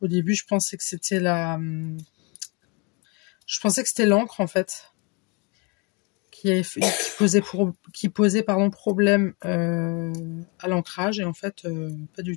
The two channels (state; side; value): quieter; right; 31.2 dB